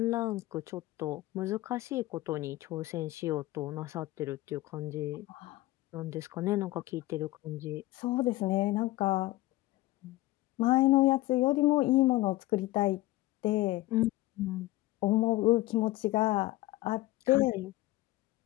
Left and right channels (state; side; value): quieter; right; 18.0 dB